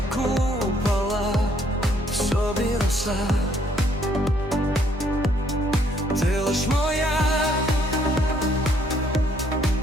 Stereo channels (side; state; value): both; normal; correlation 0.67